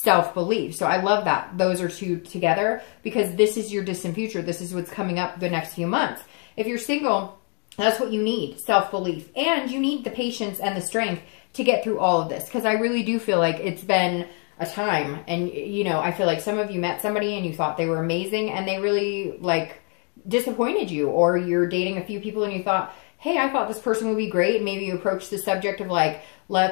So I love that those are two together, because this is your distant future. This is what's coming up the next few months. If you're single, that's what you need, self-belief. And you need the patience and the strength to get through all of this, because I really do feel like it's been a time. And, you know, I feel like some of you met somebody and you thought they were amazing, and they really, like, disappointed you. Or you're dating a few people and you thought, hey, I thought this person would be great. Maybe you approach the subject of like,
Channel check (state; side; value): quieter; right; 39.6 dB